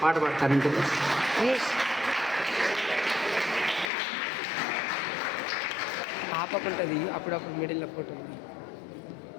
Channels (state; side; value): drops out; right; at 3.9 s